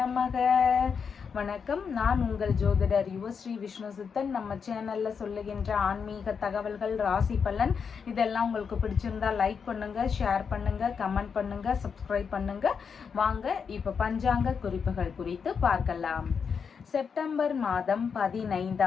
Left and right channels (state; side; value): quieter; right; 6.2 dB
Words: வணக்கம், நான் உங்கள் ஜோதிடர் யுவஸ்ரீ விஷ்ணு சித்தன். நம்ம சேனல்ல சொல்லுகின்ற ஆன்மீக தகவல்கள், ராசி பலன் இதெல்லாம் உங்களுக்கு பிடிச்சிருந்தா லைக் பண்ணுங்க, ஷேர் பண்ணுங்க, கமெண்ட் பண்ணுங்க, சப்ஸ்கிரைப் பண்ணுங்க. வாங்க இப்ப பஞ்சாங்க குறிப்புகள் குறித்து பார்க்கலாம். செப்டம்பர் மாதம்